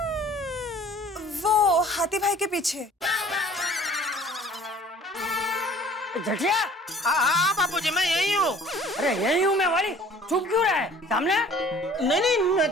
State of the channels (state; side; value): normal; both; correlation 0.51